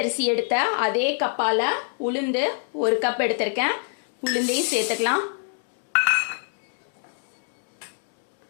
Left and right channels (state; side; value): silent; right; 62 dB below the other